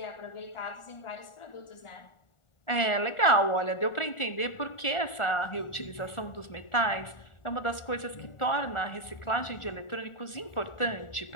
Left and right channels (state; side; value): late; right; 1.4 ms